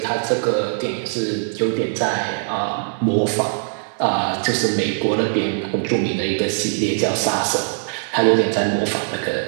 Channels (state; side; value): silent; left; digital silence